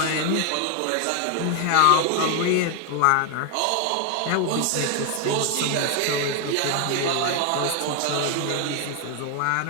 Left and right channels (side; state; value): both; different; correlation 0.01